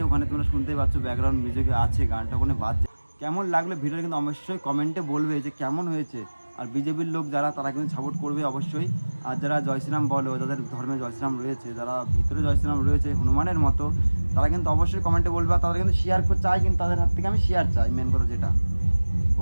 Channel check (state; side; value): inverted; both; correlation -1.00